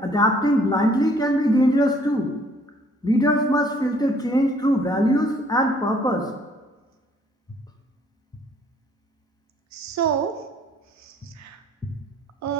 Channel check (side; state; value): both; normal; correlation 0.61